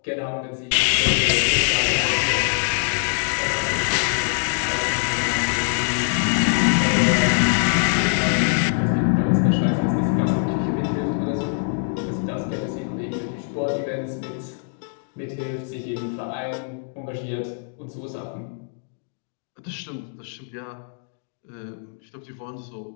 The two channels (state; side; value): silent; right; digital silence